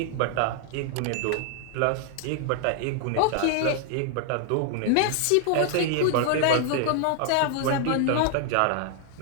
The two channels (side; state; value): both; different; correlation 0.00